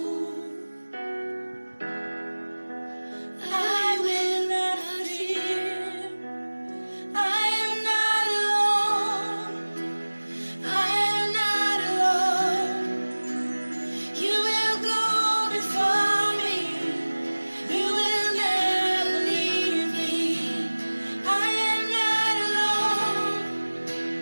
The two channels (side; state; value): both; inverted; correlation -1.00